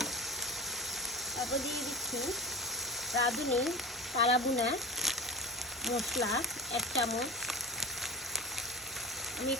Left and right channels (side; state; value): both; normal; correlation 0.32